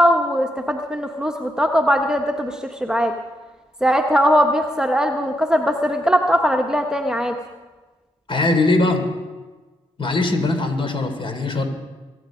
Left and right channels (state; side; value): normal; both; correlation 0.79